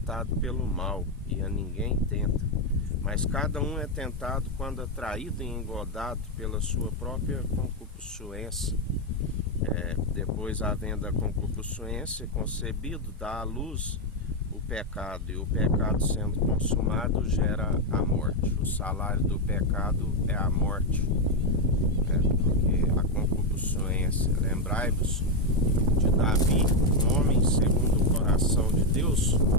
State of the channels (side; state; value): both; normal; correlation 0.05